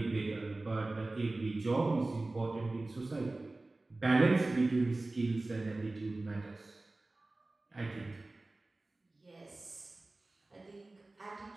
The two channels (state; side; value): quieter; left; 3.0 dB